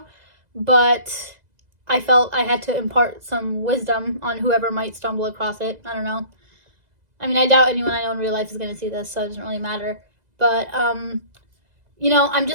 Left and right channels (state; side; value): late; left; 2.0 ms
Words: but I felt I had to impart some wisdom on whoever might stumble across it. I don't know. I mean, I doubt anyone I know in real life is going to see this, so it doesn't really matter. But, I'm